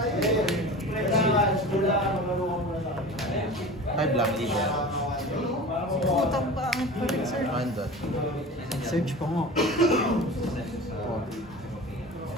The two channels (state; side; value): normal; both; correlation 0.35